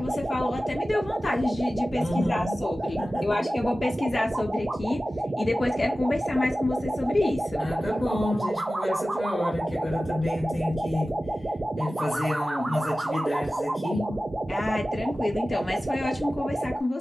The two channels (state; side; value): normal; both; correlation 0.95